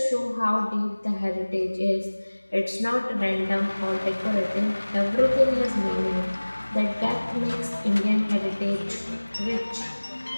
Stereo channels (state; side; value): inverted; both; correlation -1.00